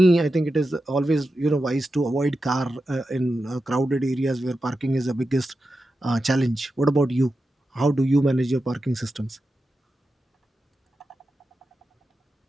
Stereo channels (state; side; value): normal; both; correlation 0.91